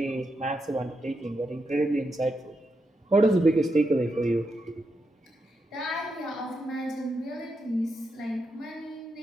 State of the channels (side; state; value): both; normal; correlation 0.84